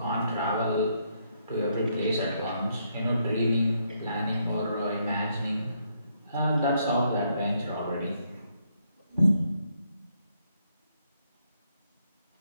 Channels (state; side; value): inverted; both; correlation -0.74